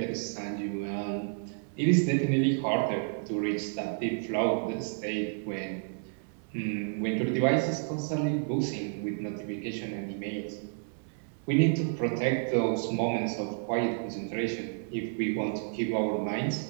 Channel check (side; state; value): left; silent; 56 dB below the other